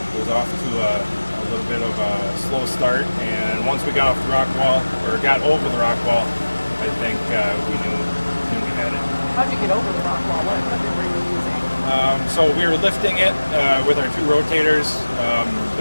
off to a little bit of a slow start. And once we got off the rock wall, or got over the rock wall, I think we knew we had it. How'd you get over the rock wall? What equipment were you using? So we were lifting it with our two rotators.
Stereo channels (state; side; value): inverted; both; correlation -1.00